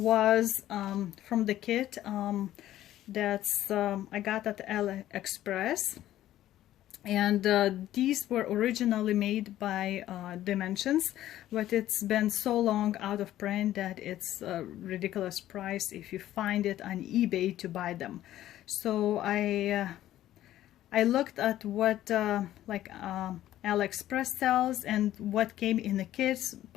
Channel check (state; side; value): quieter; right; 13.3 dB